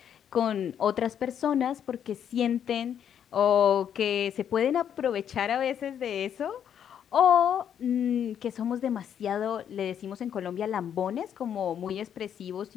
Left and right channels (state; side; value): quieter; right; 8.9 dB